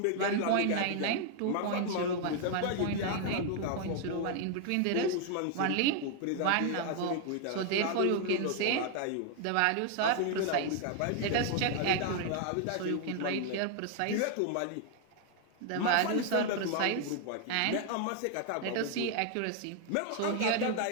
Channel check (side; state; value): both; different; correlation 0.00